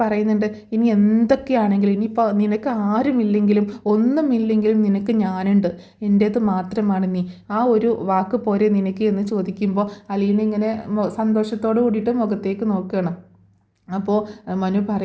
പറയുന്നുണ്ട്, ഇനി എന്തൊക്കെയാണെങ്കിലും, ഇനിയിപ്പോൾ നിനക്ക് ആരുമില്ലെങ്കിലും ഒന്നുമില്ലെങ്കിലും നിനക്ക് ഞാനുണ്ട്, എൻ്റേത് മാത്രമാണ് നീ, ആ ഒരു വാക്ക് പോരെ നിനക്ക് എന്ന് ചോദിക്കുമ്പോൾ അലീന ഇങ്ങനെ സന്തോഷത്തോട് കൂടിയിട്ട് മുഖത്തേക്ക് നോക്കുകയാണ്. അപ്പോൾ മനു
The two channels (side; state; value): both; identical; correlation 1.00